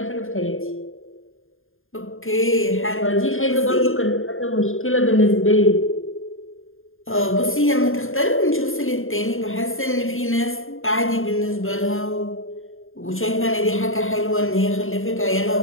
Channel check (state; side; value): late; right; 0.60 ms